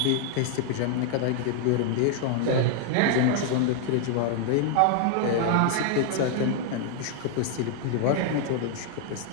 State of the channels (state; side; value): different; both; correlation 0.00